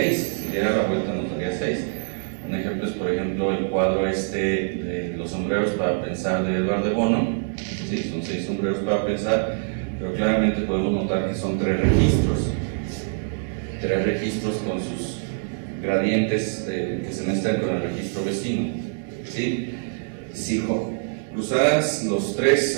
Si diera la vuelta, nos daría 6. Un ejemplo es, por ejemplo, el cuadro de los sombreros para pensar de Edward de Bono. Sí, son 6 sombreros para pensar, pero claramente podemos notar que son 3 registros. 3 registros con sus gradientes que se mezclan con el registro vecino, ¿sí? Si cruzaras los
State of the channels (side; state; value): left; silent; 62 dB below the other